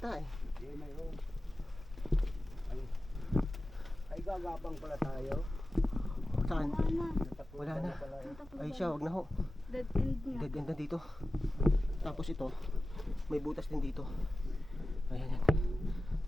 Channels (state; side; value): normal; both; correlation 0.94